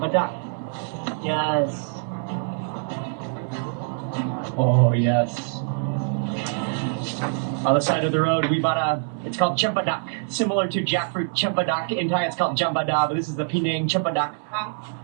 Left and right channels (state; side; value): silent; left; digital silence